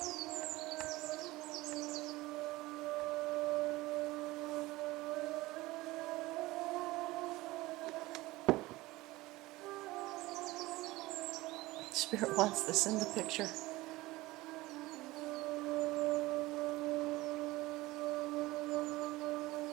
Spirit wants this in the picture.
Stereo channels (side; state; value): left; quieter; 19.6 dB